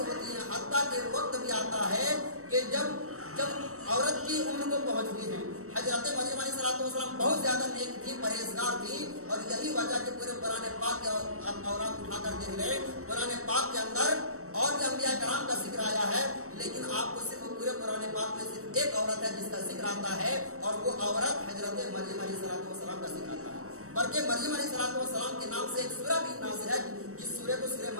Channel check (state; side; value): late; left; 0.64 ms